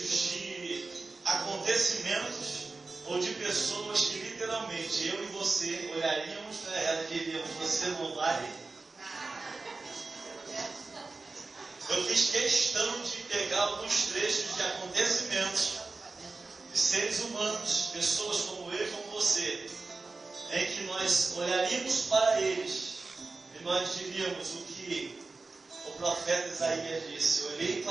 de acontecimentos ou de pessoas que literalmente eu e você olharíamos para ela e diríamos: você não vale. Eu fiz questão de pegar alguns trechos de acontecimentos de seres humanos, pessoas como eu e como você, em que nós olharíamos para eles e nós diríamos o que o profeta Isaías disse: eu olhei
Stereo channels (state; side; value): quieter; left; 3.7 dB